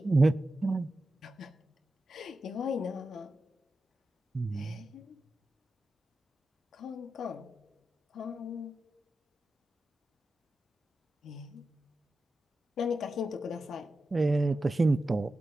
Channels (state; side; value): normal; both; correlation 0.91